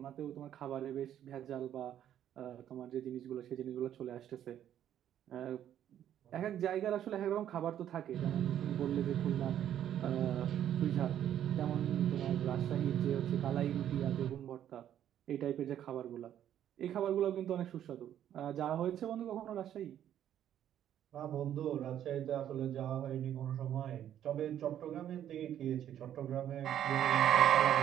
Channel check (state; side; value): quieter; left; 10.7 dB